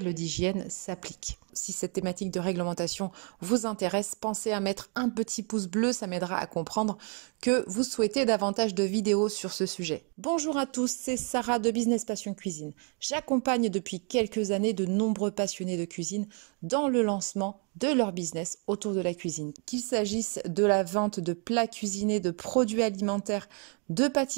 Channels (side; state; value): left; quieter; 37.5 dB